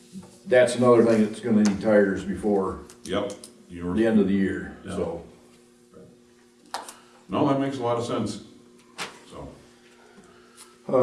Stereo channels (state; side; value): identical; both; correlation 1.00